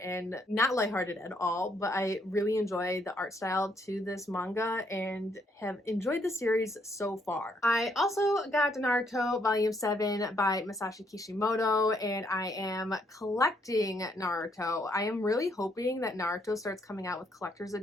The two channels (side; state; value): both; normal; correlation 0.71